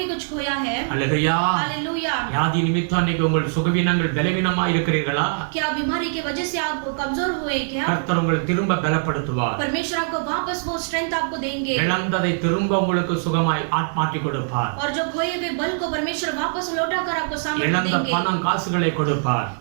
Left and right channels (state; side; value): silent; left; 57 dB below the other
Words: कुछ खोया है. हालेलुया. हालेलुया. வியாதி நிமித்தம் இன்னைக்கு உங்கள் சுகவீனங்கள் பலவீனமா இருக்கிறீர்களா? क्या बीमारी की वजह से आप कमजोर हुए क्या? கர்த்தர் உங்களை திரும்ப பலப்படுத்துவார். परमेश्वर आपको वापस वो स्ट्रेंथ आपको देंगे. இழந்ததை திரும்ப உங்களுக்கு சுகமாய் மாற்றி கொடுப்பார். और जो खोए हुए बल को परमेश्वर वापस लौटाकर आपको सामर्थ्य இழந்த देंगे. பணம் காசுகளை கொடுப்பார்.